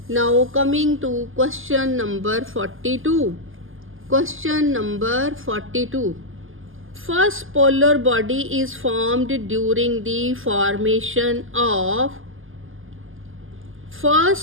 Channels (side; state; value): left; late; 0.59 ms